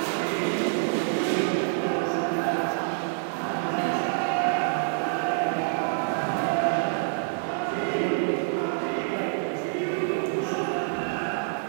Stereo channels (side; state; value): left; silent; digital silence